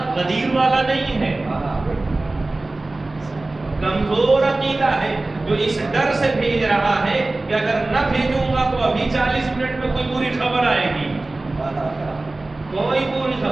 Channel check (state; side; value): quieter; left; 3.0 dB